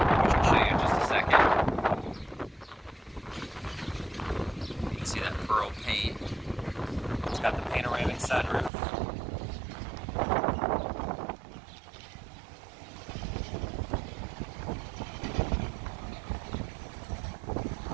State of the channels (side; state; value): left; drops out; at 8.7 s